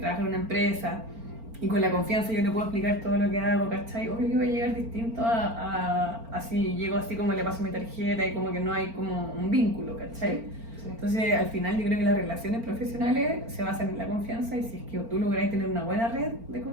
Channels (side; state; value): left; late; 4.4 ms